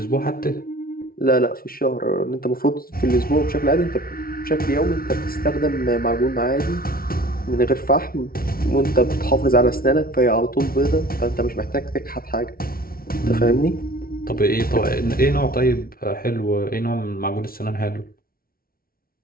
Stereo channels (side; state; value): right; late; 0.43 ms